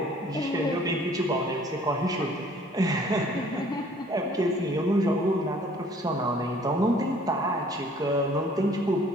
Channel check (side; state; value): both; normal; correlation 0.56